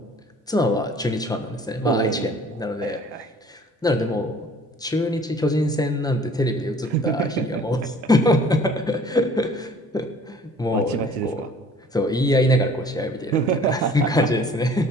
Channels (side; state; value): both; normal; correlation 0.52